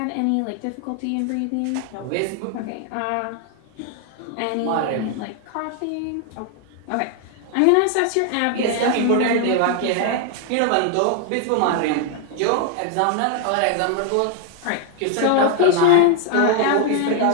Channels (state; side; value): different; both; correlation 0.00